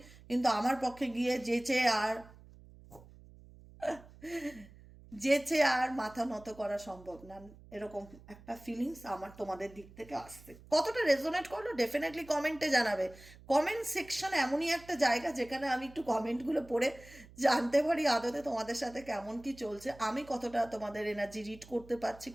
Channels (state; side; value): noise; right; hum, 21 dB below the sound